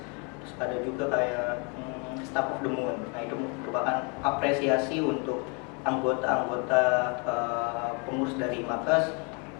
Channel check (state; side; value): quieter; right; 34.0 dB